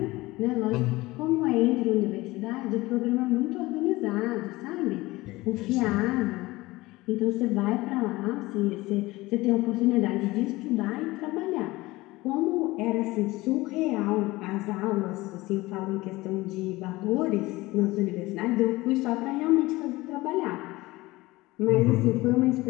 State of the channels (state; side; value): quieter; right; 20.0 dB